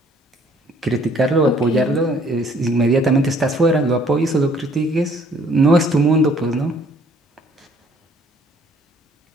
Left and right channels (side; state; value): both; normal; correlation 0.60